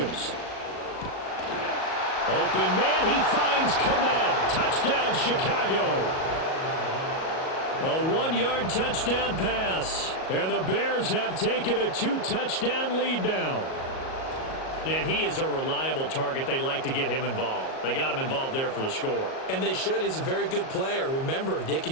Open man, he finds Komet. Touchdown, Chicago. A 1-yard touchdown pass. And the Bears have taken a 2-touchdown lead now. And he is a reliable target. They like to get him involved. They got him involved there for the score. And they should. He's a very good player. Remember, they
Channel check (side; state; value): right; late; 37 ms